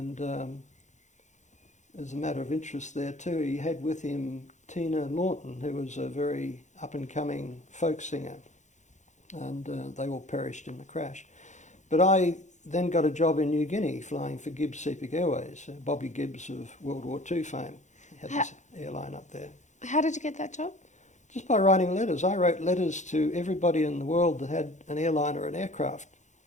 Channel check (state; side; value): late; right; 0.35 ms